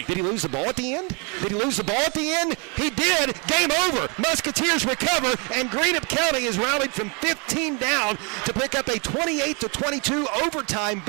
Did he lose the ball at the end? Did he lose the ball at the end? He did. Game over. Musketeers recover, and Greenup County is rallied from 15 down to pick up a 28-22 overtime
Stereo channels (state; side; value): quieter; left; 33.0 dB